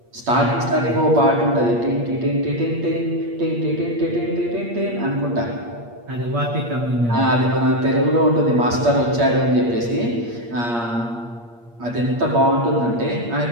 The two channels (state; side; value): late; left; 8.5 ms